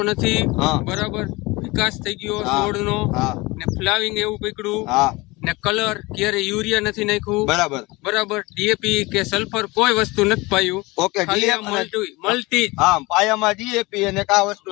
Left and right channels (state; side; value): quieter; right; 23.0 dB